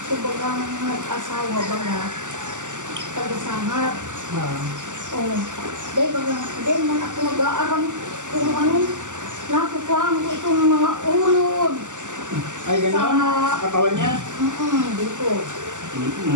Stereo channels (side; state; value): left; late; 0.86 ms